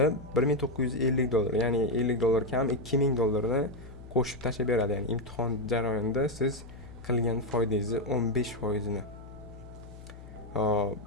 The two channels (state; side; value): noise; left; hum, 16 dB below the sound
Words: $1950, ya'ni $50 kam $2000 ni qo'shib tashlab beradi. Ya'ni imtihon jarayonida siz qilgan foydangizni 15% ni.